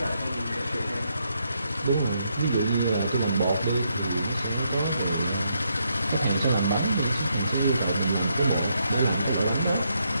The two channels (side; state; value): both; inverted; correlation -0.78